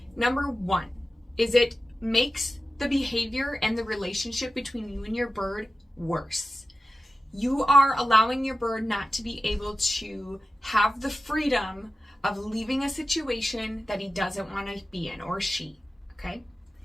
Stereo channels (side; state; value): both; normal; correlation 0.93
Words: Number 1 is it makes the behavior and the relationship between you and your bird worse. You are allowing your bird not to be able to have the freedom of leaving a situation that he doesn't want to be in, or she, okay?